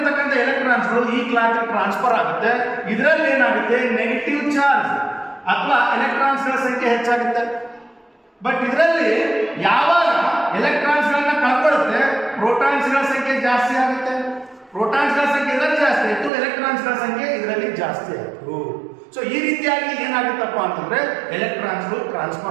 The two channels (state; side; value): drops out; left; at 16.3 s